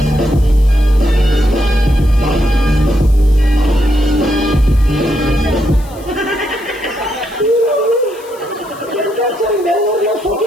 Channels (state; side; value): noise; left; hiss, 23 dB below the sound